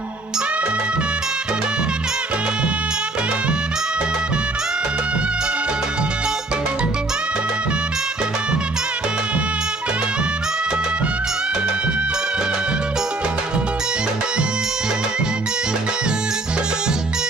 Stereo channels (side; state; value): left; quieter; 3.0 dB